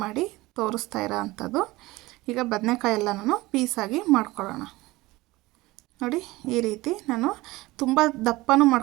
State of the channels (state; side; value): quieter; left; 20.1 dB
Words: ಮಾಡಿ ತೋರಿಸ್ತಾ ಇರೋ ಅಂಥದ್ದು. ಈಗ ಬದನೆಕಾಯಿ ಎಲ್ಲನೂ ಪೀಸಾಗಿ ಮಾಡ್ಕೊಳ್ಳೋಣ. ನೋಡಿ, ಈ ರೀತಿ ನಾನು ತುಂಬ ದಪ್ಪನೂ